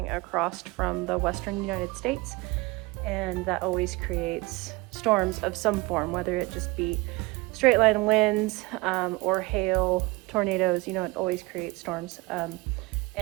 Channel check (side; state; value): left; quieter; 23.3 dB